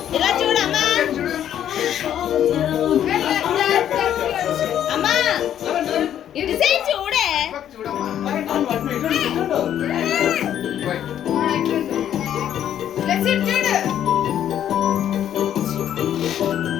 ఇలా చూడమ్మా అమ్మా ఇటు సైడ్ చూడే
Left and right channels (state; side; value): quieter; right; 10.4 dB